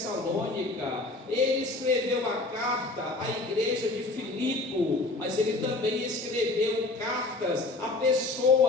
ele escreveu a carta à igreja de Filipe, mas ele também escreveu cartas a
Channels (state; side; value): quieter; right; 3.0 dB